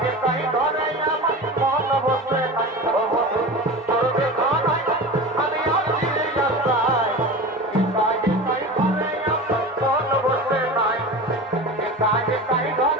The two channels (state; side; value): normal; both; correlation 0.30